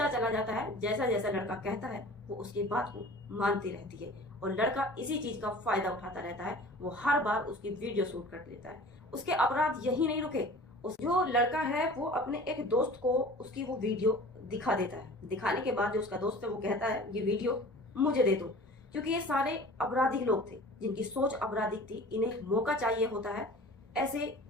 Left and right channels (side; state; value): both; normal; correlation 0.43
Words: चला जाता है। जैसा जैसा लड़का कहता है वो उसकी बात को मानती रहती है और लड़का इसी चीज का फायदा उठाता रहता है। वो हर बार उसकी वीडियो शूट कर लेता है। उसके अपराध यही नहीं रुके। जो लड़का है वो अपने एक दोस्त को उसकी वो वीडियो दिखा देता है। दिखाने के बाद जो उसका दोस्त है वो कहता है ये वीडियो मुझे दे दो, क्योंकि ये सारे अपराधिक लोग थे जिनकी सोच अपराधिक थी। इन्हें मौका चाहिए होता है ऐसे